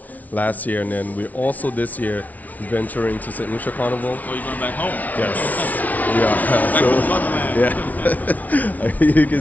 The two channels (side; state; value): right; late; 0.074 ms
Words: last year. And then we're also this year venturing to St. Lucia Carnival. Oh, you're going back home? Yes. You